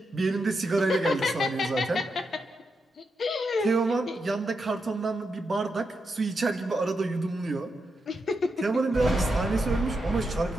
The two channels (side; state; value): both; normal; correlation 0.85